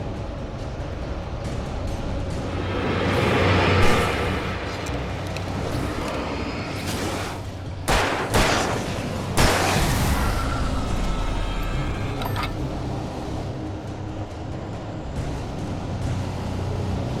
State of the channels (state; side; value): identical; both; correlation 1.00